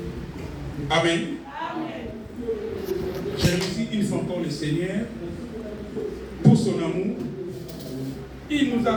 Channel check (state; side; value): identical; both; correlation 1.00